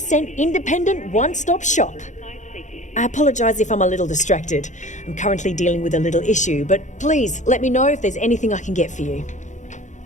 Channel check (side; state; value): right; late; 0.35 ms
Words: independent one-stop shop. I apologize if I'm a little distracted. I'm currently dealing with a little issue, but please let me know if there's anything I can get for you.